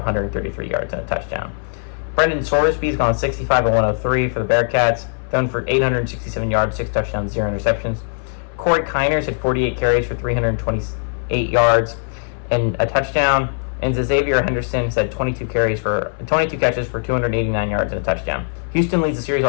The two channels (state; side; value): silent; right; 59 dB below the other